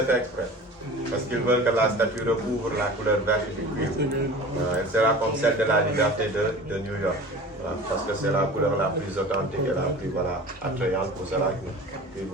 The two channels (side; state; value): both; normal; correlation 0.39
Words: fait exprès. Parce qu'ils veulent que la statue recouvre la couleur verte du cuivre. Elle sera comme celle de la liberté de New York. Parce que c'est la couleur la plus authentique et la plus attrayante pour cela.